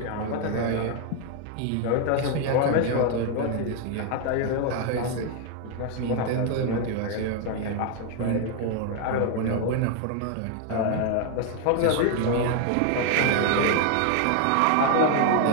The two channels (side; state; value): both; different; correlation 0.00